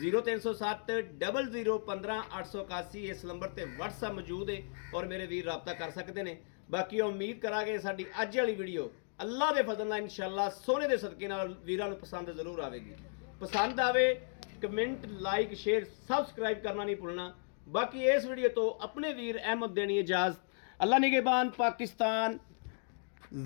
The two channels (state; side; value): silent; right; digital silence